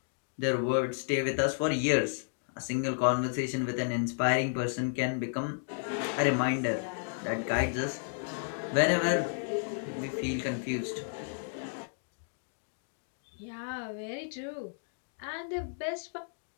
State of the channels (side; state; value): right; silent; digital silence